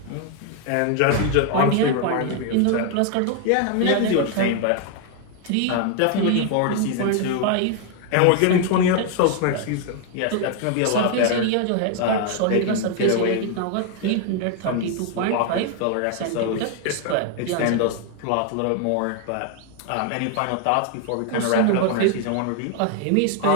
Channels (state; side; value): different; both; correlation 0.00